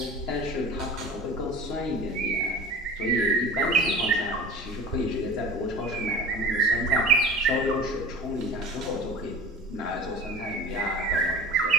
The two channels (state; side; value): normal; both; correlation 0.37